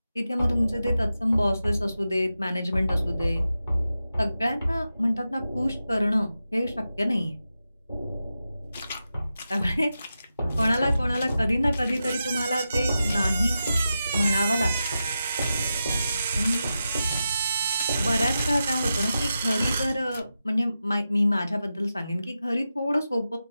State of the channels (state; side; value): inverted; both; correlation -0.90